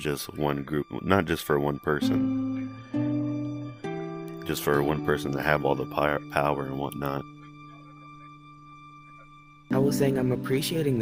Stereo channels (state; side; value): identical; both; correlation 1.00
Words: one group, not just for one person. Just for one person to have all the power and whatnot. I was saying I'm appreciating